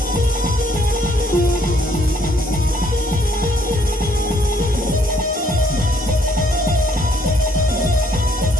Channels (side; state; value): both; normal; correlation 0.65